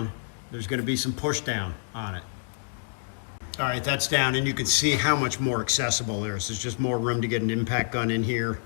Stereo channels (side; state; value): right; silent; digital silence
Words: there's going to be some push down on it. All right, that's down, and you can see how much more accessible there is. There's just more room to get an impact gun in here,